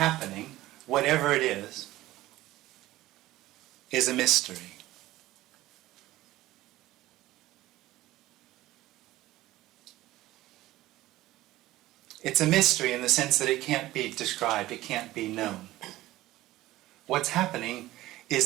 whatever it is a mystery. It's a mystery in the sense that it can't be described, it can't be known. What's happening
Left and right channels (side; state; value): left; quieter; 16.5 dB